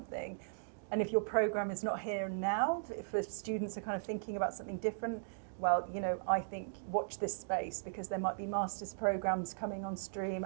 And if your program is not here now, if the students are kind of thinking about something different, well, I think watch this space, because there might be master's programs coming on stream,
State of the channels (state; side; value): silent; left; digital silence